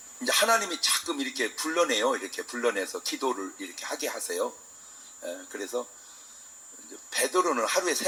이제 하나님이 자끔 이렇게 불러내요. 이렇게 불러내서 기도를 이렇게 하게 하세요. 그래서 이제 베드로는 하루에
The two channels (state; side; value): identical; both; correlation 1.00